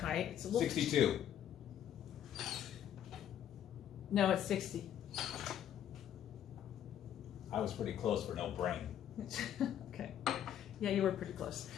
It's a little 62. No, it's 60. I was pretty close for no brain. Okay. Yeah, you were pretty close.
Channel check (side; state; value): right; quieter; 10.3 dB